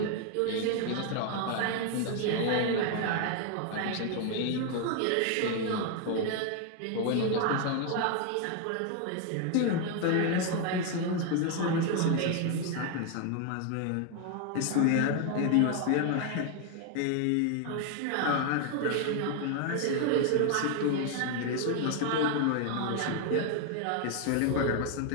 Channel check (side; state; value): both; different; correlation 0.01